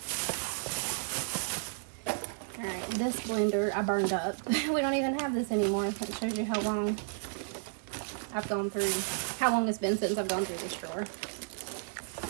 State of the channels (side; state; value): left; silent; digital silence